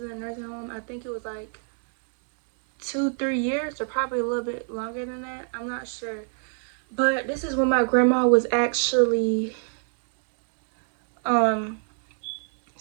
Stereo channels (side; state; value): left; silent; 60 dB below the other